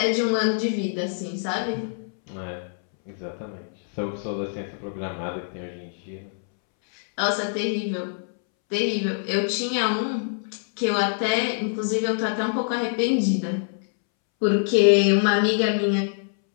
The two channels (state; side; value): silent; right; 62 dB below the other